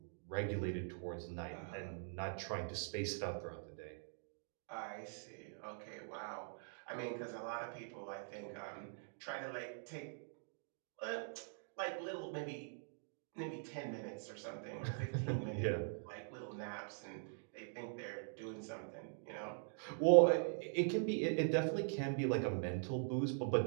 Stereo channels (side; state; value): left; silent; digital silence